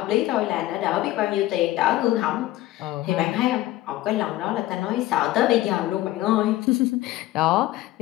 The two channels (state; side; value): quieter; right; 16.1 dB